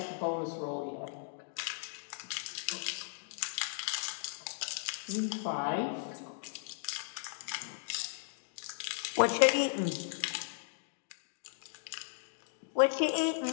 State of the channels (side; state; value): right; silent; digital silence